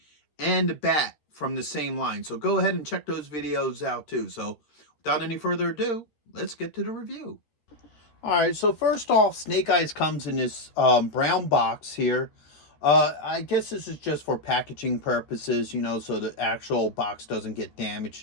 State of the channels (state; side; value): late; right; 13 ms